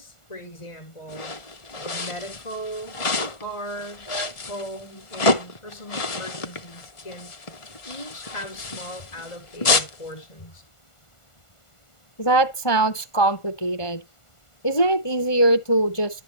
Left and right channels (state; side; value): late; right; 1.4 ms